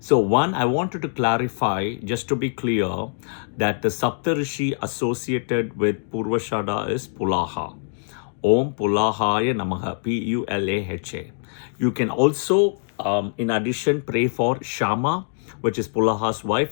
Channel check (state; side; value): silent; right; digital silence